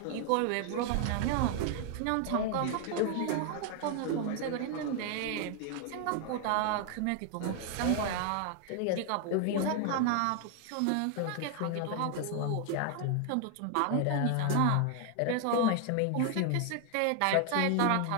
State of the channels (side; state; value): both; different; correlation 0.00